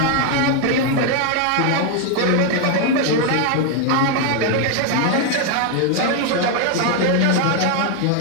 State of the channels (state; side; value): different; both; correlation 0.01